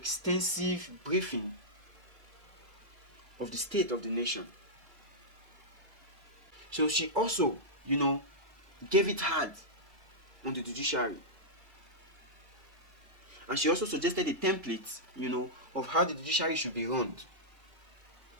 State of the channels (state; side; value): late; left; 2.3 ms